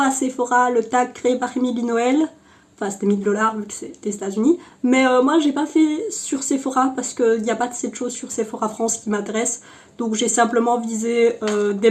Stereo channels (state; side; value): identical; both; correlation 1.00